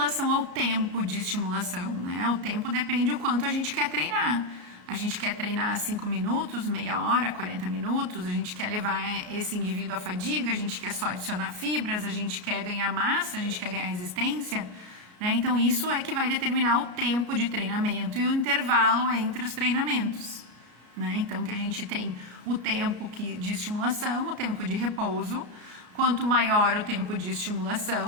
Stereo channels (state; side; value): late; left; 33 ms